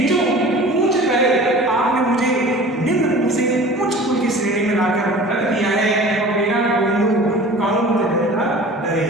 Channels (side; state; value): both; normal; correlation 0.42